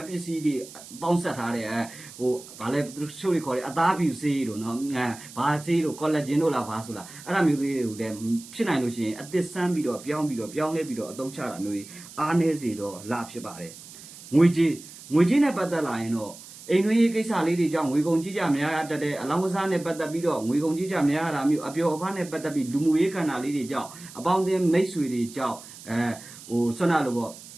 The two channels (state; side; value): noise; right; hiss, 17 dB below the sound